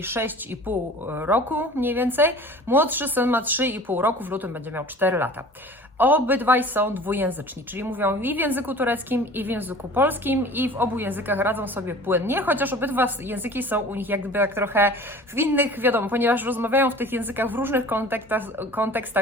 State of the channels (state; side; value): normal; both; correlation 0.43